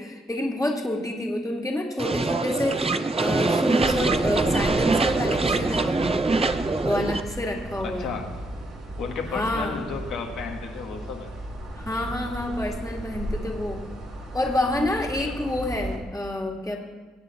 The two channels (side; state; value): both; normal; correlation 0.75